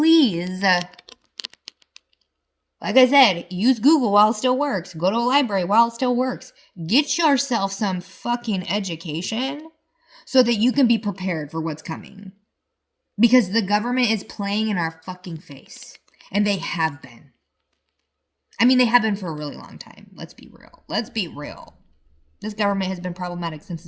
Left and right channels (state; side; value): identical; both; correlation 1.00